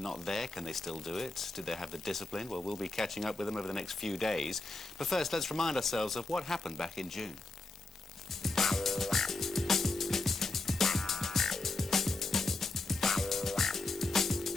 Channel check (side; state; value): right; quieter; 3.1 dB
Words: not there, can they still do it? Did they have the discipline? Well, we'll be catching up with them over the next few days. But first, let's remind ourselves of what happened back in June.